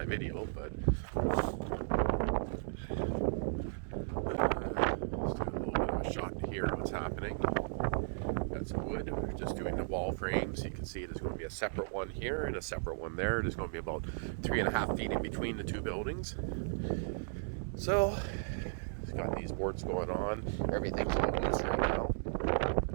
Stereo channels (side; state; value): left; silent; digital silence